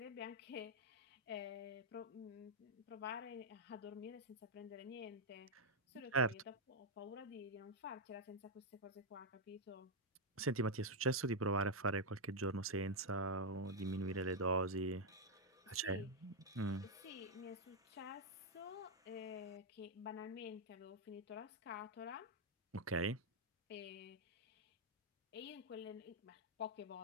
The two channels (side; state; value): both; normal; correlation -0.01